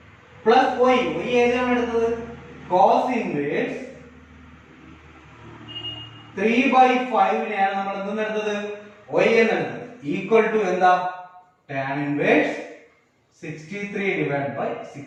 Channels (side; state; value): both; identical; correlation 1.00